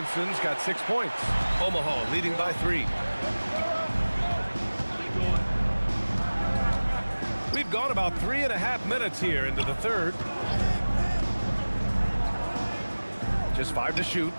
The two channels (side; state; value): both; inverted; correlation -1.00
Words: got 6 points. Omaha leading by 3. We've gone about 3.5 minutes here into the third. Just 5 to shoot.